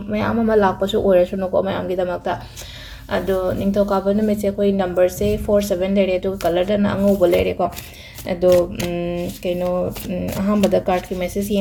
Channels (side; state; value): both; identical; correlation 1.00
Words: ama lakpasu oire suno ko mayam gi damakta ado ningthokaba numit se koi number se 47 lere do color da na angoba lere ko ado kaino ahambada card ki message